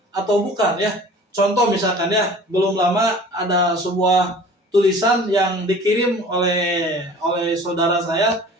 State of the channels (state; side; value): normal; both; correlation 0.44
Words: bukan, ya. Contoh misalkan, ya, belum lama ada sebuah tulisan yang dikirim oleh saudara saya